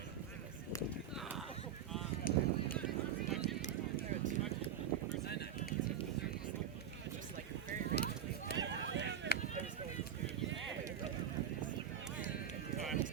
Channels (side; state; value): left; quieter; 8.7 dB